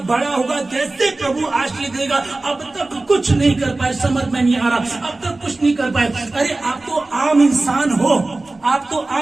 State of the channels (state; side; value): quieter; left; 3.1 dB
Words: बड़ा होगा, कैसे प्रभु आशीष देगा। अब तक कुछ नहीं कर पाए, समझ में नहीं आ रहा, अब तक कुछ नहीं कर पाए। अरे आप तो आम इंसान